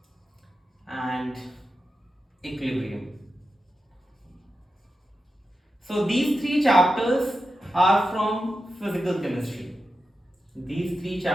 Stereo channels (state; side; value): normal; both; correlation 0.90